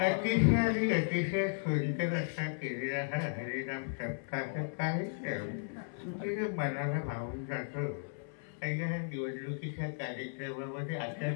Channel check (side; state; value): right; silent; 54 dB below the other